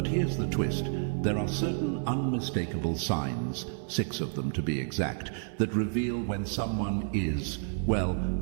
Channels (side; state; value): left; silent; 58 dB below the other